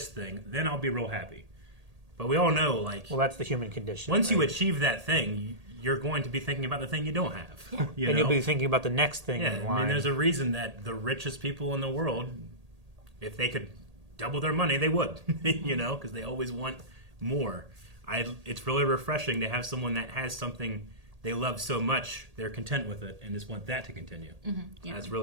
thing, then I'll be real happy. But we all know, like, Well, that's the human condition. once you right? achieve that thing, you're going to be thinking about the thing you don't have. You and know? you'll be thinking about the next thing Yeah, in I line. mean, there's a reason that the richest people in the world, if they could double their money, they would, you know, because they always want more. It's really refreshing to have someone that has something they love so much, they're content with it, and just want that to continue. Yeah. That's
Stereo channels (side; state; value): left; late; 1.8 ms